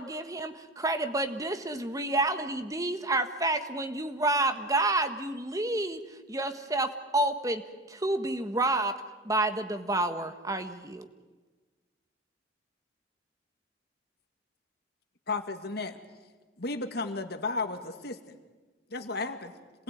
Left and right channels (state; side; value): normal; both; correlation 0.24